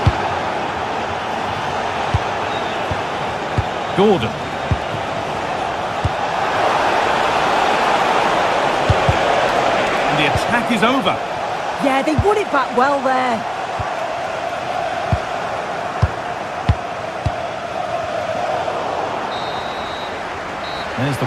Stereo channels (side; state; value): both; identical; correlation 1.00